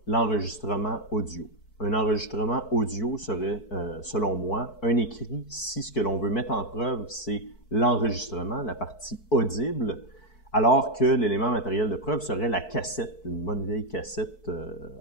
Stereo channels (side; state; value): right; late; 4.6 ms